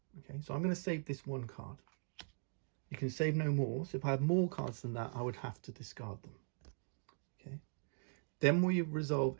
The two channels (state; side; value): silent; left; digital silence